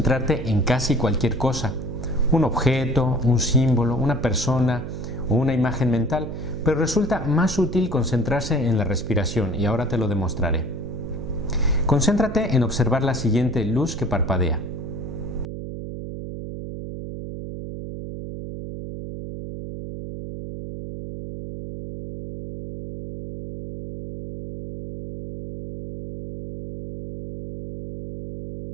en casi cualquier cosa. Un objeto, un símbolo, una persona o una imagen mental, pero resulta más útil concentrarse en la respiración y ahora te lo demostraré. Concéntrate en observar la siguiente luz que parpadea.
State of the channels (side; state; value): right; noise; hum, 8 dB below the sound